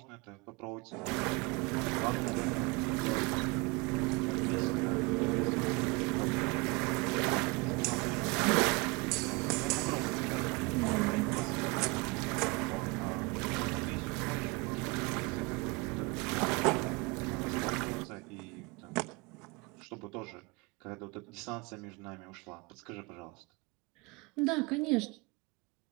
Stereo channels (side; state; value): left; quieter; 27.0 dB